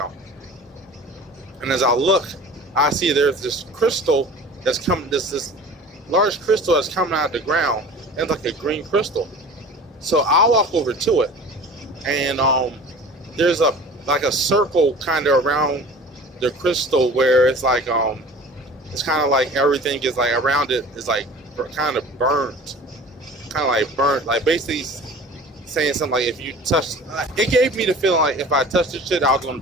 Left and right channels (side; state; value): both; normal; correlation 0.41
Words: And as I look, I see there's this crystal that's coming, this large crystal that's coming out of the ground, and it's like a green crystal. So I'll walk over to it, and there's a circle kind of around the crystal, where it's like it's kind of like everything is like around it is like kind of burnt, like basically saying something like, if you touch, it gave me the feeling like if I touched this shit, I was gonna